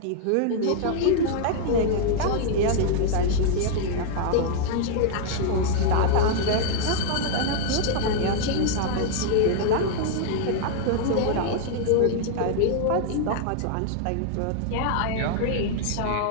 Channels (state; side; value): different; both; correlation -0.01